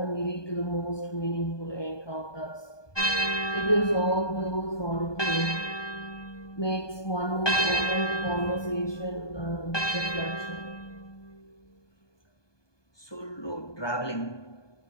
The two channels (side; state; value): right; late; 1.2 ms